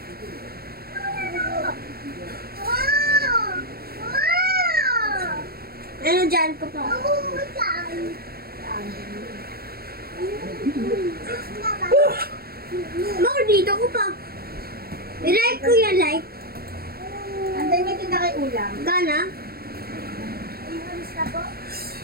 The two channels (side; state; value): left; late; 0.44 ms